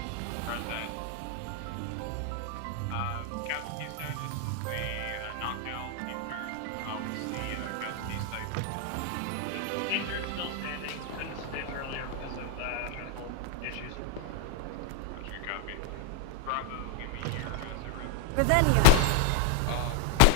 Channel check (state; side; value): different; both; correlation 0.01